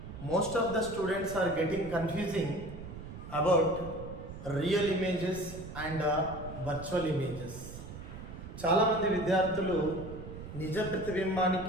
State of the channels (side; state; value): right; noise; rumble, 11 dB below the sound